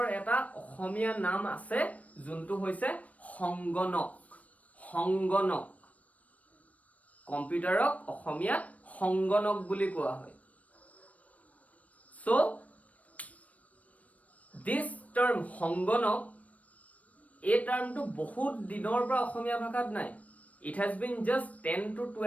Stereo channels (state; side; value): late; right; 0.068 ms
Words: এটা অসমীয়া নাম আছে যোনটো হৈছে সংগণক. সংগণক কম্পিউটাৰক অসমীয়া সংগণক বুলি কোৱা হয়. So this term সংগণক এই টাৰ্মটো বহুত দিনৰ পৰা অসমীয়া ভাষাত নাই. It has been just 10 to